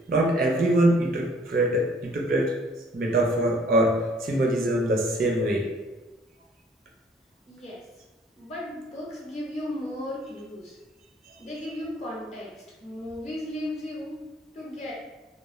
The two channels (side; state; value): both; normal; correlation 0.58